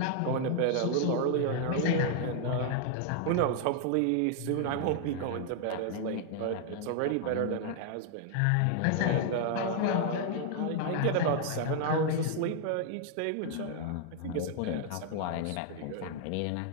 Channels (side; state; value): both; different; correlation 0.00